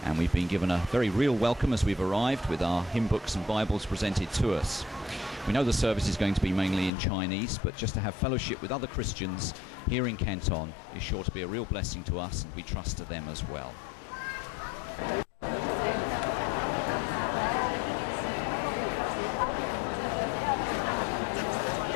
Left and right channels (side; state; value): right; drops out; at 6.9 s